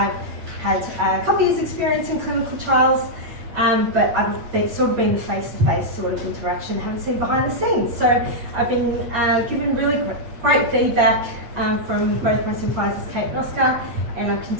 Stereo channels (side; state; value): left; late; 8.6 ms